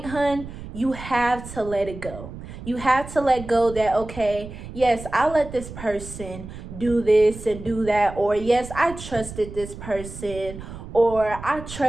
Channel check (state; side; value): noise; right; rumble, 12 dB below the sound